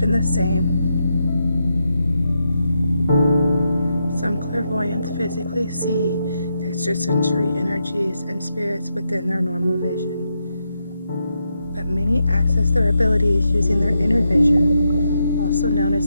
the same. Some clairvoyants physically see extrasensory energies and spirits within their normal vision, but many access their abilities using their inner vision, also known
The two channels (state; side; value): inverted; both; correlation -0.83